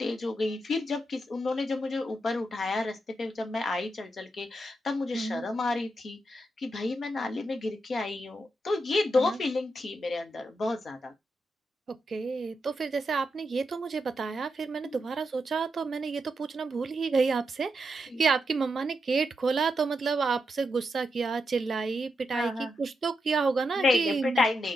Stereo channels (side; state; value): both; normal; correlation 0.84